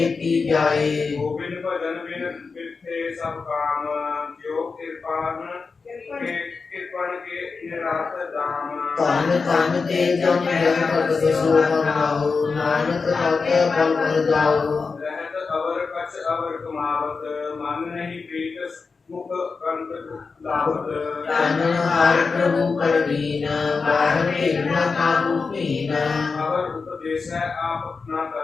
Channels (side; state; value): right; quieter; 4.7 dB